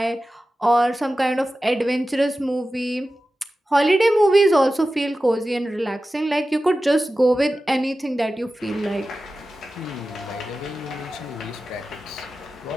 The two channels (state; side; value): normal; both; correlation 0.94